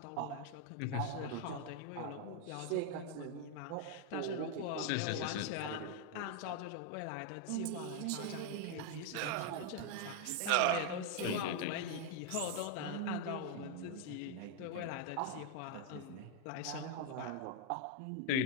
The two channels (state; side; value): different; both; correlation 0.01